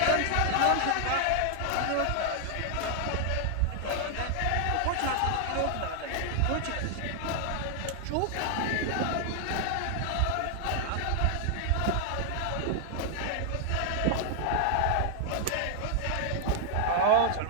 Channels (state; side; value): different; both; correlation 0.00